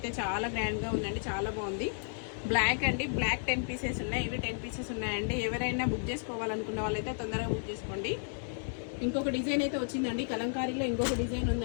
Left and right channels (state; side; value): silent; right; 56 dB below the other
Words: చాలా గ్రాండ్గా ఉందండి. చాలా బాగుంది. బ్లాక్ అండి, బ్లాక్ 10 పీసెస్ ఉన్నాయి. ఇవి 10 పీసెస్ ఉన్నాయండి. ఎవరైనా బుక్ చేసుకోవాలనుకున్న వాళ్ళైతే తొందరగా బుక్ చేసుకోండి. ఇంకొక డిజైన్ అయితే వచ్చిందండి. కలంకారీలో ఇంకొక డిజైన్